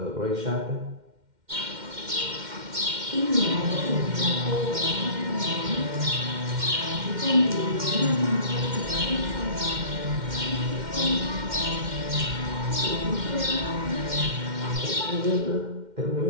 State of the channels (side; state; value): left; late; 2.1 ms